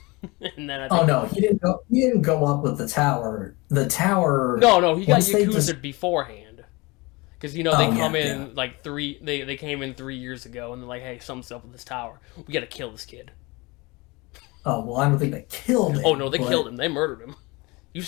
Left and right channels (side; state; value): right; quieter; 24.7 dB